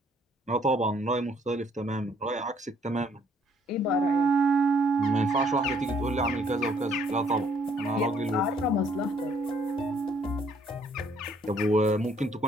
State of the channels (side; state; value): both; normal; correlation 0.64